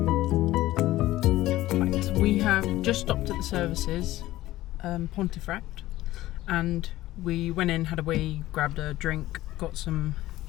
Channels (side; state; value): right; quieter; 16.1 dB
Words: We have just stopped at the services, Pontefract, and we went in, had a wee, grabbed a drink, got some